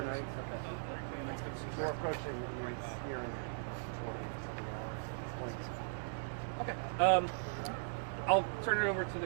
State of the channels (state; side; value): silent; left; digital silence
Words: overnight. Okay. We're approaching here in 20-something hours at this point. Okay. I'll turn it over to